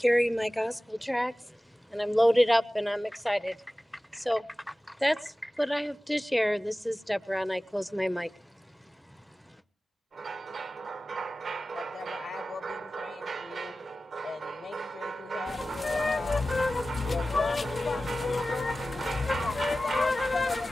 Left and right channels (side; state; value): both; normal; correlation 0.96